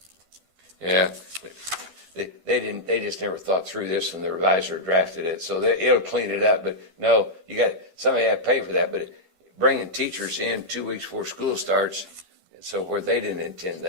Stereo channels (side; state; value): left; late; 11 ms